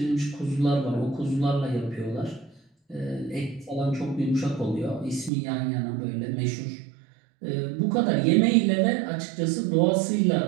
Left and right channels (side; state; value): left; drops out; at 5.3 s